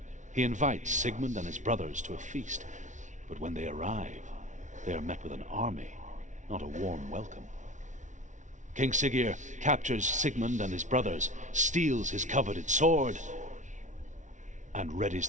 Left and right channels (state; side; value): late; left; 0.36 ms